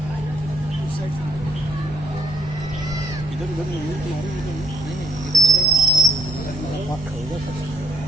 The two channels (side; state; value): right; noise; hum, 18 dB below the sound